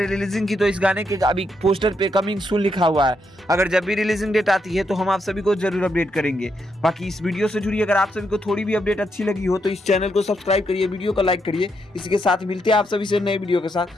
रिलीजिंग की तो इस गाने के अभी पोस्टर पे कमिंग सून लिखा हुआ है। अगर जब भी रिलीजिंग डेट आती है तो हम आप सभी को जरूर अपडेट करेंगे। बाकी इस वीडियो से जुड़ी अगर आप सभी को थोड़ी भी अपडेट अच्छी लगी हो तो इस चैनल को सब्सक्राइब करिए, वीडियो को लाइक करिए। इसी के साथ मिलते हैं आप सभी से नए वीडियो के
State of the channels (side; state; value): both; normal; correlation 0.79